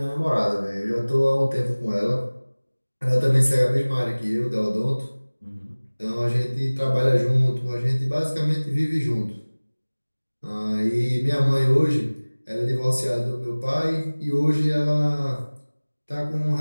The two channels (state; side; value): inverted; both; correlation -1.00